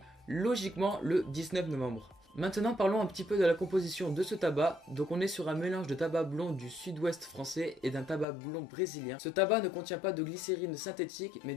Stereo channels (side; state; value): right; drops out; at 8.2 s